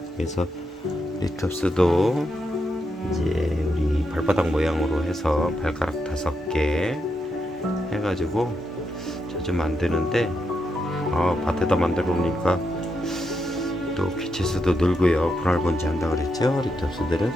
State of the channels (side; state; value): both; normal; correlation 0.83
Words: 그래서 리톱스도 이제 우리 발바닥 모양으로 해서 발가락 5개 해가지고 자주 만드는데 밭에다 만들어 놓으니까 또 귀체수도 늘고요. 분할번지 한다 그랬죠, 리톱스들은.